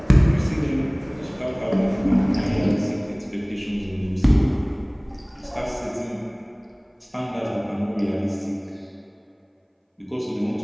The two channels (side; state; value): both; identical; correlation 1.00